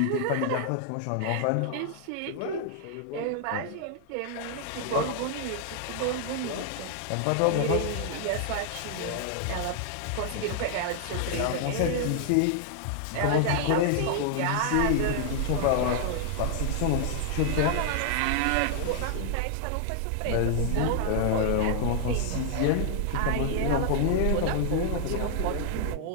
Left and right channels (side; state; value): both; different; correlation -0.01